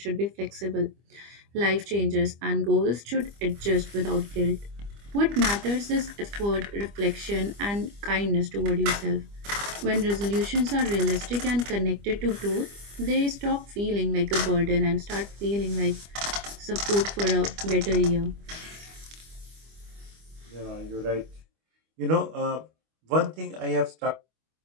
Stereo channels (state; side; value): late; left; 25 ms